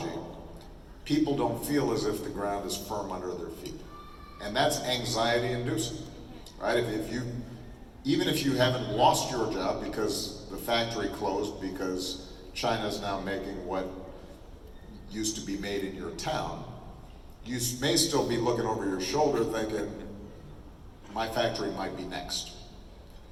people don't feel as if the ground is firm under their feet. And that's anxiety inducing, right? Even if you haven't lost your job because the factory closed because China's now making what used to be made in your town, you may still be looking over your shoulder thinking, my factory might be next.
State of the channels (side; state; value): both; identical; correlation 1.00